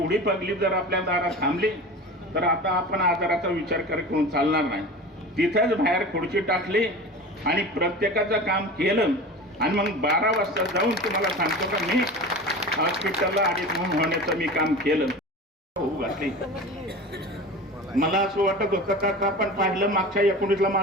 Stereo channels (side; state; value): both; normal; correlation 0.33